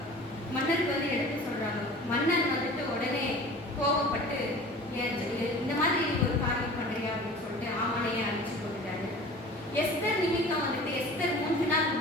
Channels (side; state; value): both; normal; correlation 0.41